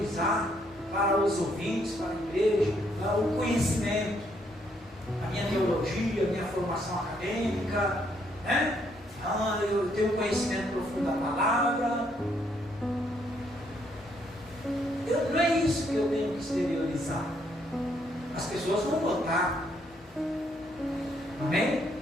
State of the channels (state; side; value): normal; both; correlation 0.71